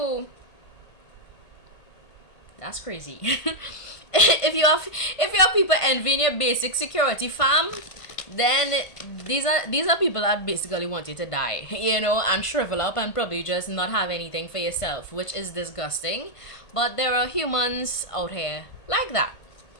that's crazy. if you have people envying your basic security, fam, then these are people that basically want you to die, and shrivel up and probably just not have anything for yourself, which is disgusting. But there are humans out here like that.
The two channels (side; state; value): right; late; 1.5 ms